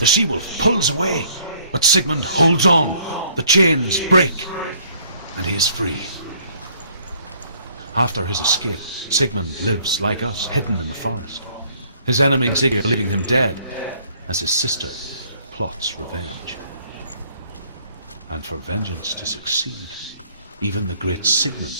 she-wolf pulls away, but Sigmund holds on. The chains break, and he is free. After his escape, Sigmund lives like us, hidden in the forest. His enemy Sigurd leaving him dead, as his sister plots revenge. And for vengeance to succeed, even the great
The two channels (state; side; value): inverted; both; correlation -0.61